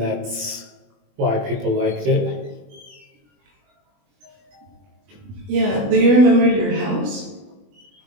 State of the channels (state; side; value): late; left; 20 ms